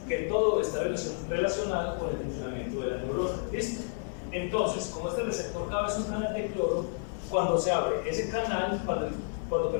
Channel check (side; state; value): right; silent; digital silence